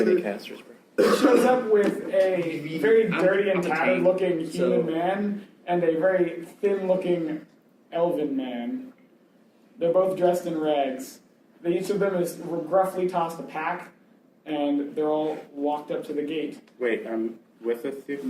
many casters, bro. he shows up with a very dirty and tattered looking human man and a very thin looking elven man. They're both dressed in rags. Each of them is gruffly tossed a pack, and they're all walked up to the gate. Wait, with us too?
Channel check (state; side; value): identical; both; correlation 1.00